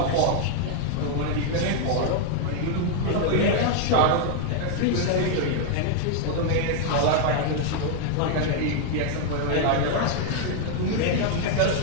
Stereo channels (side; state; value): both; different; correlation 0.00